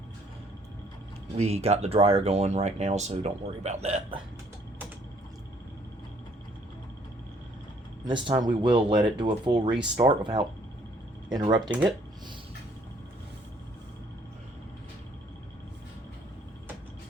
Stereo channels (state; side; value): normal; both; correlation 0.63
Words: We got the dryer going right now, so don't worry about that. And this time we will let it do a full restart without interrupting it.